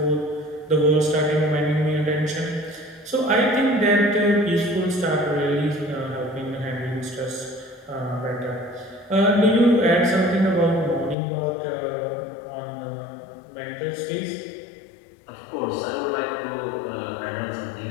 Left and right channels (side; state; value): right; drops out; at 11.2 s